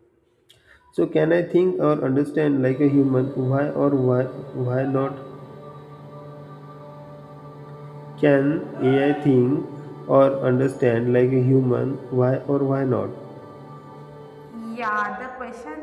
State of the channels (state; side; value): identical; both; correlation 1.00